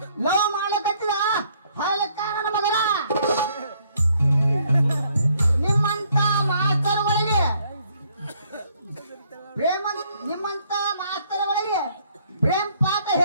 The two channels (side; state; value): both; inverted; correlation -0.66